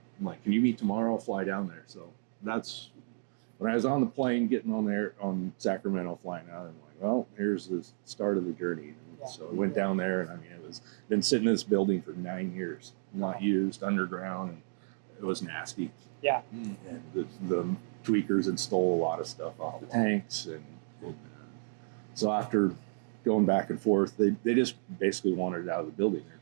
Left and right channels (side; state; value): left; silent; digital silence